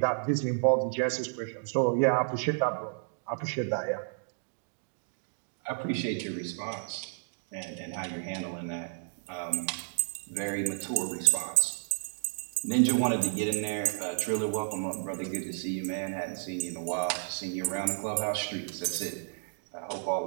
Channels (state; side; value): silent; left; digital silence